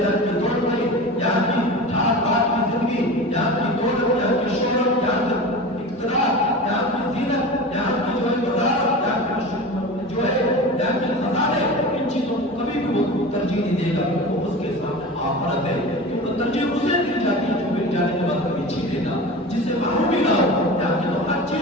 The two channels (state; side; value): normal; both; correlation 0.32